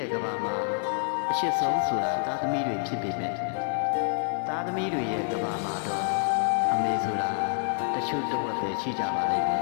ဲ့ကဘာမှာအရှိဆုံးဆိုတာသားသမီးတွေဖြစ်ပေမဲ့သားသမီးတွေရဲ့ကဘာမှာတော့အမေဆိုတာတချို့တဝက်ပဲရှိကြပါလိမ့်မယ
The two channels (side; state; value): right; silent; 60 dB below the other